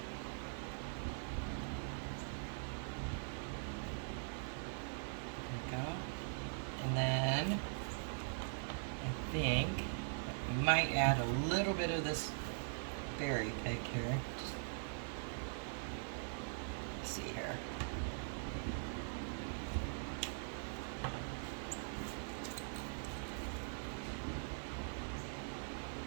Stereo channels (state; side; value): silent; left; digital silence